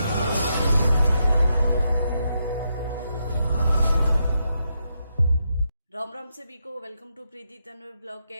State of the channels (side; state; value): both; inverted; correlation -0.82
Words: राम राम सभी को, welcome to Preeti Tanwar blog.